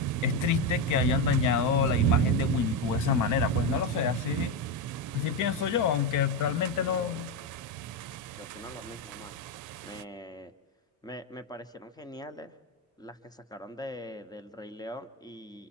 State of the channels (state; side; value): normal; both; correlation 0.10